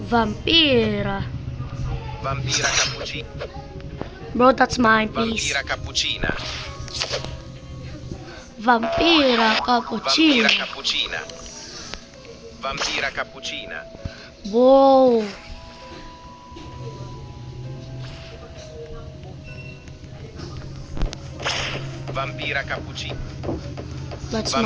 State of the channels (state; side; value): identical; both; correlation 1.00